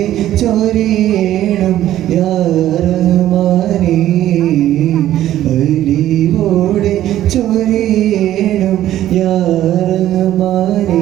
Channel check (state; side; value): quieter; left; 12.9 dB